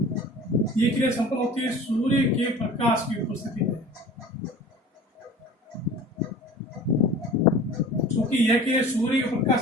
ये क्रिया संपन्न होती है सूर्य के प्रकाश की उपस्थिति में। क्योंकि यह क्रिया सूर्य के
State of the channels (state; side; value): normal; both; correlation 0.42